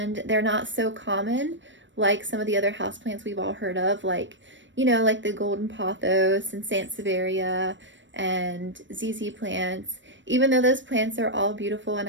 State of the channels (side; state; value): left; late; 0.54 ms